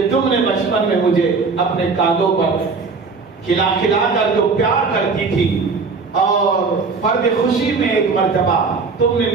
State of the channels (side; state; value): left; quieter; 4.5 dB